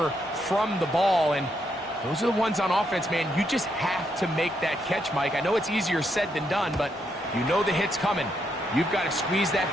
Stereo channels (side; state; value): both; normal; correlation 0.78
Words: from the ball. And those are the ones on offense, man. You just have to make that catch, Mike. I know it's easier said than done, but you know the hit's coming. You've got to squeeze that